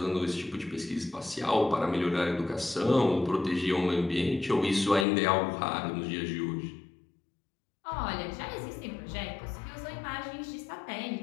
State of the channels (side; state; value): right; drops out; at 5.1 s